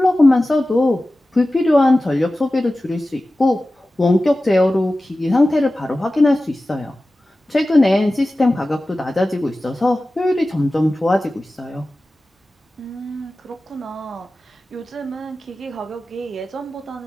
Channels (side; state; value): both; normal; correlation 0.96